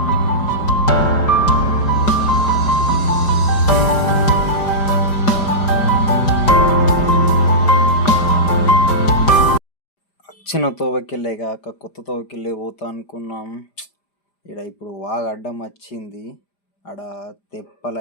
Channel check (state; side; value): late; right; 5.0 ms